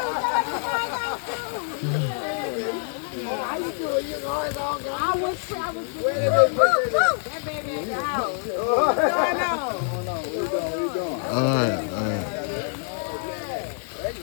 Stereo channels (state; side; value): silent; right; 61 dB below the other